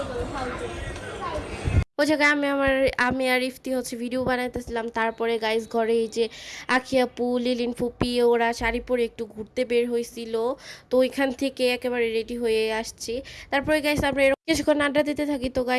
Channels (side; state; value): both; identical; correlation 1.00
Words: করবো ফালতু। ওই জায়গায় আমি আর ইফতি হচ্ছে ভিডিও বানাইতেছিলাম। তারপরে গাইস ঘরে এই যে আখি আপু, লিলিন ফুপি ওরা শাড়ি পরে একটু ঘুরতে বের হয়েছিল, তো ওইখান থেকে একেবারে রেডি হয়ে আসছি। তারপরে গাইস আমরা এরকম কিছুক্ষণ আড্ডা দিতে থাকি। তো